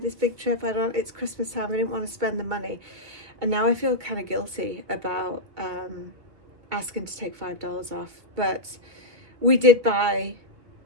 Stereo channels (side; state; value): left; late; 2.0 ms